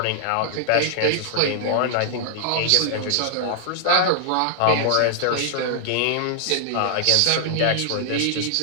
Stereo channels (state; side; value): different; both; correlation 0.00